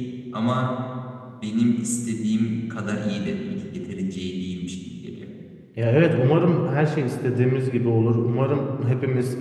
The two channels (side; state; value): both; identical; correlation 1.00